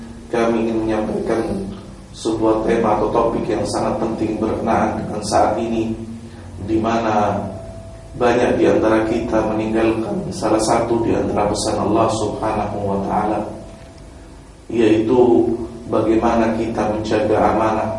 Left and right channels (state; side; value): identical; both; correlation 1.00